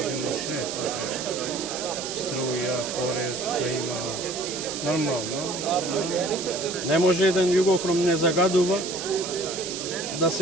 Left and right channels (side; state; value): right; noise; hiss, 6 dB below the sound